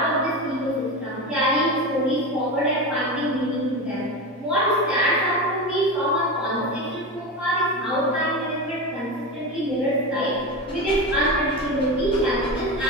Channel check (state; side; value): normal; both; correlation 0.22